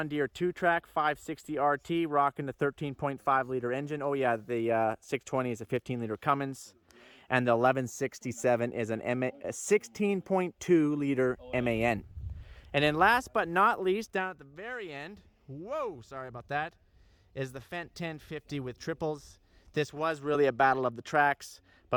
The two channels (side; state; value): both; identical; correlation 1.00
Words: Deere 2-track 560 RT, rocking the 13.5 liter engine. Oh yeah, the 620 is a 15 liter Cummins, and the 1167 is a 16.2 liter MAN. And then last but not least, down at the very end, whoa, sorry about that, is the Fendt 1050 with triples. This was really a battle of the tracks,